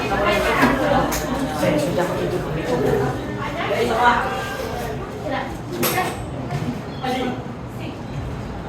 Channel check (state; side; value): identical; both; correlation 1.00